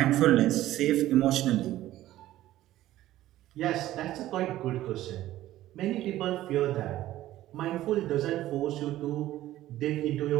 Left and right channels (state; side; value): quieter; left; 14.6 dB